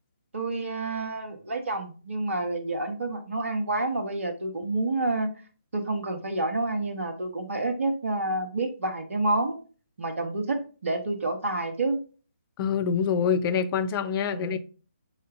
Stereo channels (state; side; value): inverted; both; correlation -0.57